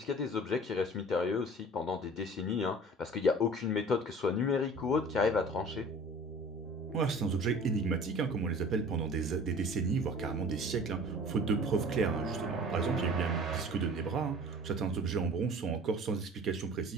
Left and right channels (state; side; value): normal; both; correlation 0.44